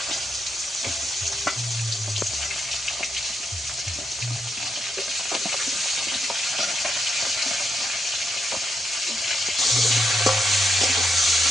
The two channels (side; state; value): both; normal; correlation 0.81